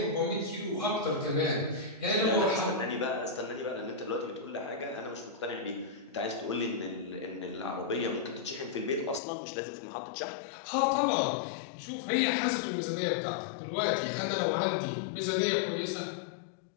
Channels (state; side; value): drops out; right; at 9.2 s